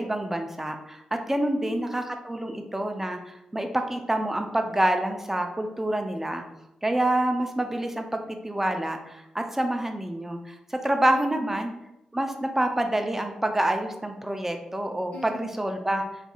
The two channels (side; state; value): both; normal; correlation 0.94